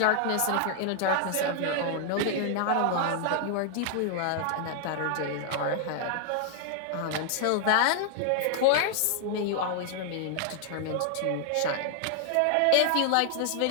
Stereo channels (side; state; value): both; different; correlation 0.00